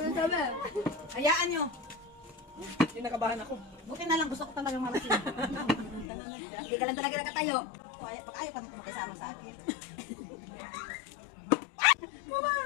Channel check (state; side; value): drops out; right; at 6.1 s